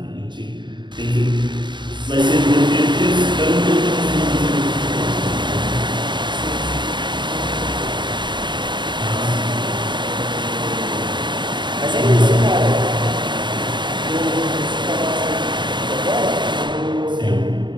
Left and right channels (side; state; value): left; late; 0.22 ms